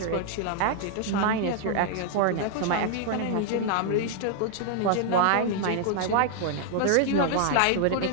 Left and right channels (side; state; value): both; different; correlation 0.00